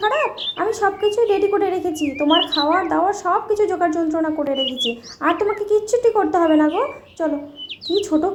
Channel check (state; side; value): identical; both; correlation 1.00